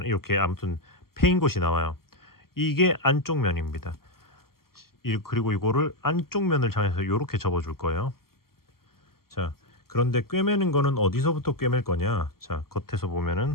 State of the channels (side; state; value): right; late; 0.93 ms